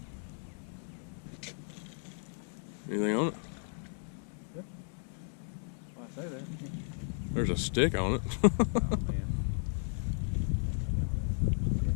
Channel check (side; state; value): right; silent; 55 dB below the other